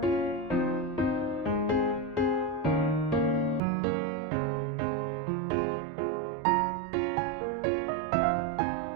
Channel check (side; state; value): left; drops out; at 3.6 s